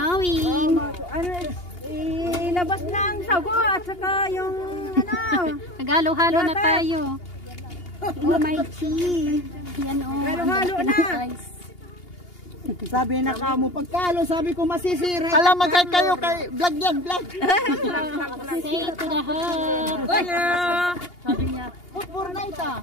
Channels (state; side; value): late; right; 2.8 ms